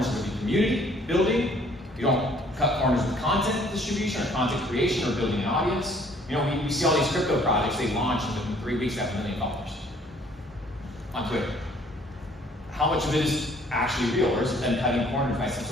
with the community building. You don't cut corners with content distribution or content creation or building an audience. We see all these crypto projects, they launch and within 3 weeks they have $1 million on Twitter. How much of it is actually real, or is it them cutting corners by some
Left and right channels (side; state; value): both; normal; correlation 0.59